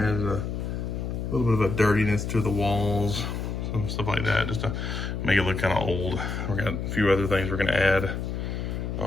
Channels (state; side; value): noise; left; hum, 3 dB below the sound